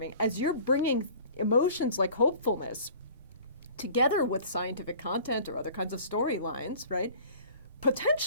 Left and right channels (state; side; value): inverted; both; correlation -0.47